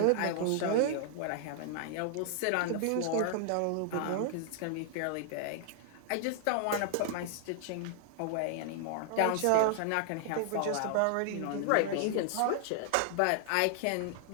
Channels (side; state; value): both; different; correlation 0.00